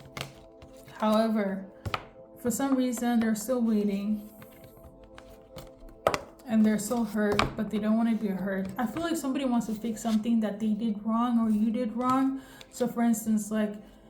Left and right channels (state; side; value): identical; both; correlation 1.00